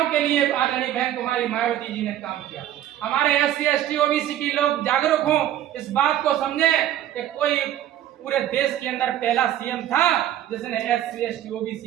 के लिए आदरणीय बहन कुमारी मायावती जी ने काम किया। हमारे SC ST OBC की लोग जागरूक हों, इस बात को समझे कि कोई पूरे देश के अंदर पहला CM था जिसने SC ST OBC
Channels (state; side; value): quieter; left; 12.0 dB